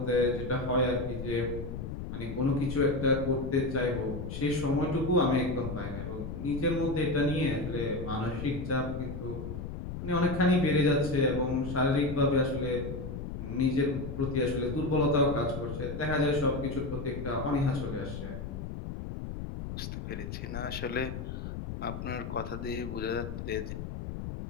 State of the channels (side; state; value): left; noise; rumble, 6 dB below the sound